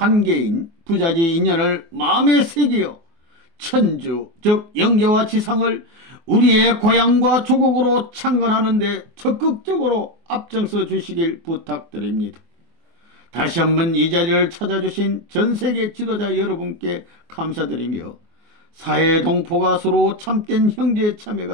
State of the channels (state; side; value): late; left; 24 ms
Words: 부자지 인연을 마음에 새기어 천주, 즉 영계와 지상을 우리의 고향과 조국으로 창건하는 데 적극적으로 앞장서 주시길 부탁드립니다. 다시 한번 이 자리를 찾아주신 전세계 지도자 여러분께 감사드리며 사회 동포가 서로 참된 형제